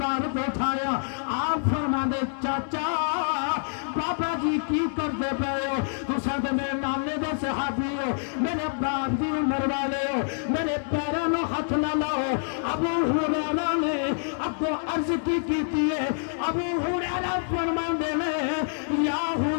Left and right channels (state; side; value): silent; right; 60 dB below the other